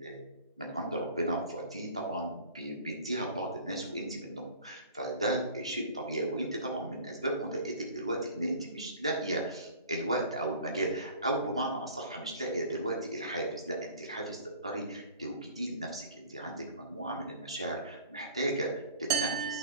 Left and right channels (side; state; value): both; inverted; correlation -0.45